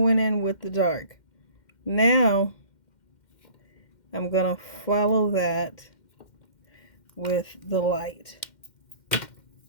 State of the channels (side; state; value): right; late; 2.1 ms